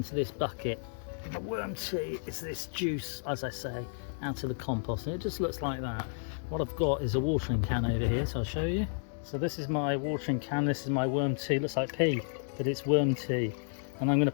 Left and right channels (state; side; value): silent; right; digital silence